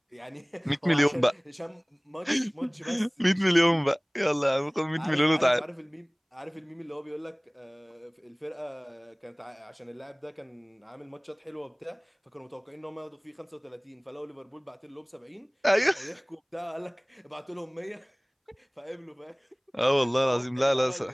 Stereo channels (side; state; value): both; identical; correlation 1.00